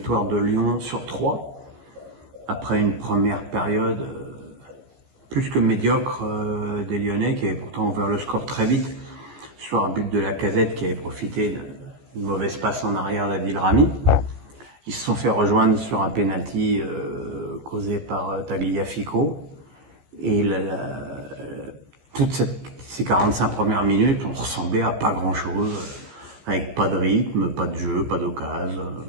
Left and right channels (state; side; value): late; left; 15 ms